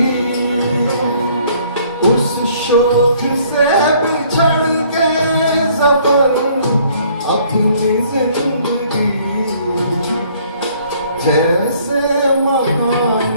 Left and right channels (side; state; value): both; inverted; correlation -0.60